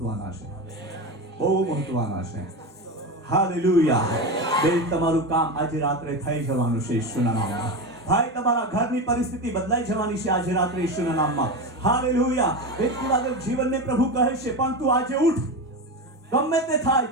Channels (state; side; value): normal; both; correlation 0.20